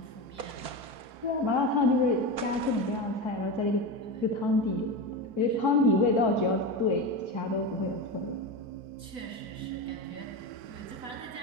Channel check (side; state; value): left; late; 4.5 ms